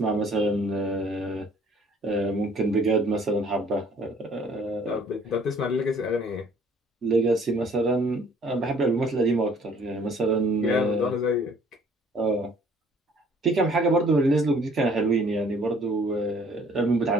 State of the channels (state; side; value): normal; both; correlation 0.57